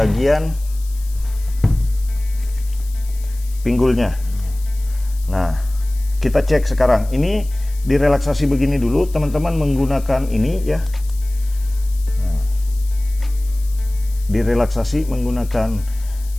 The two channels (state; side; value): noise; left; hiss, 21 dB below the sound